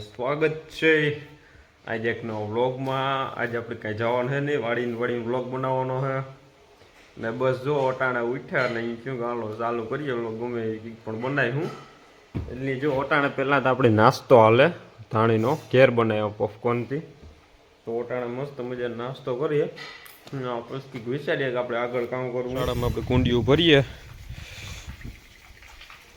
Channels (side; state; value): both; identical; correlation 1.00